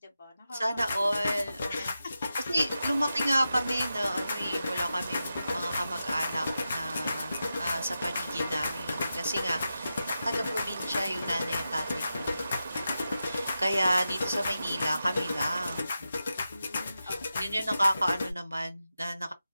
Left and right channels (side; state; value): both; inverted; correlation -0.90